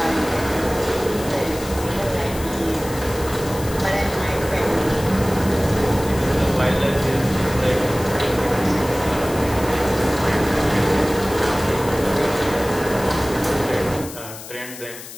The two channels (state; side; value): noise; left; hiss, 14 dB below the sound